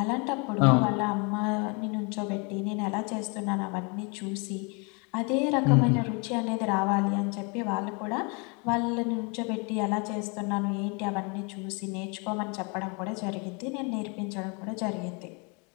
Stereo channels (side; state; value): right; quieter; 32.7 dB